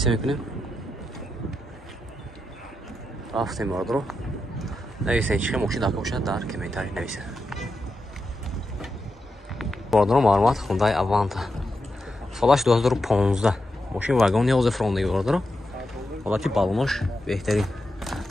мекунем. Рафтем бародор. Нависен чӣ мошин дака боша дар комментар нависе. Бародор маълумот Hyundai Avanta. Солаш 2015. Мошин вагон 11 фронтаги бародор. Ҳолати балонош беҳтарин.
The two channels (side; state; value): both; normal; correlation 0.87